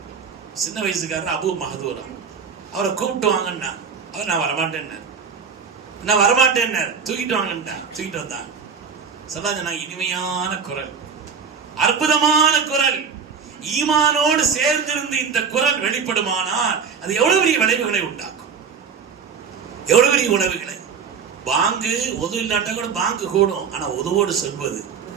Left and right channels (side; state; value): left; quieter; 6.2 dB